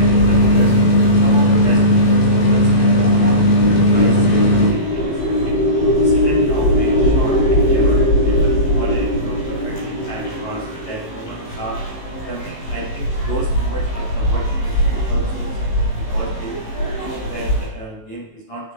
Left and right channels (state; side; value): late; right; 18 ms